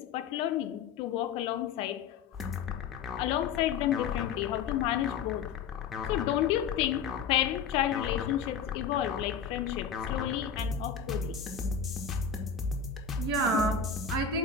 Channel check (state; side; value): quieter; right; 6.6 dB